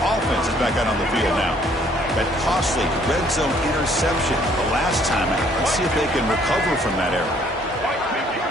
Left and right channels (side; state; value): both; normal; correlation 0.62